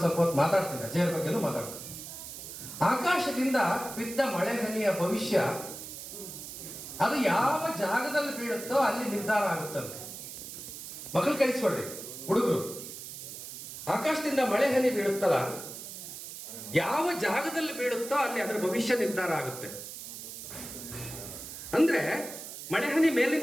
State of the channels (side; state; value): right; noise; hiss, 10 dB below the sound